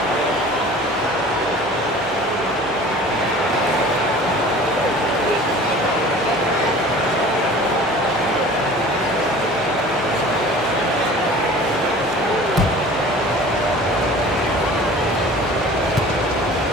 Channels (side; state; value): both; normal; correlation 0.43